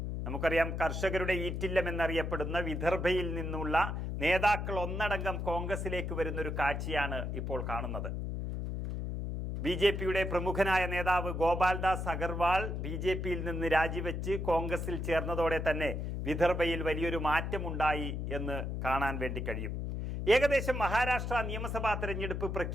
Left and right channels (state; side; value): noise; left; hum, 3 dB below the sound